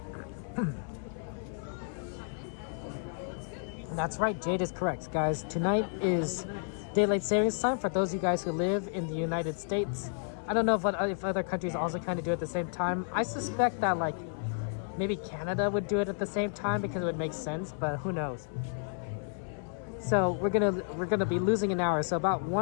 That's right, Jade is correct, guys. Tonight is daylight savings time for those of you guys who live in the United States. I don't know if other countries also kind of do it at the same time. I suspect that maybe Canada would do it at the same time because it would make sense, but who knows? So we're gonna be losing an hour. So about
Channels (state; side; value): silent; right; 57 dB below the other